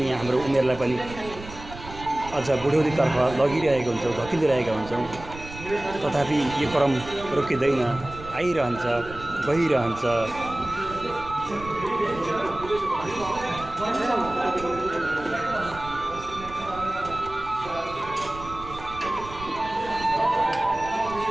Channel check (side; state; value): right; noise; rumble, 14 dB below the sound